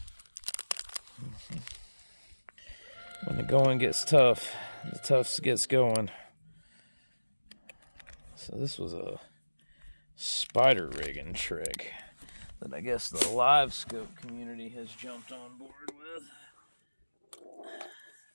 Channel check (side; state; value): both; inverted; correlation -1.00